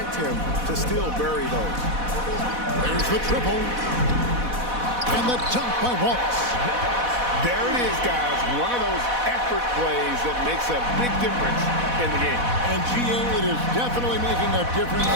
him to still bury those. There's the triple. And the dunk by Wallace. There it is, guys. One of those effort plays that makes a big difference in the game. And GA, it is definitely making a difference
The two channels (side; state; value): left; late; 4.1 ms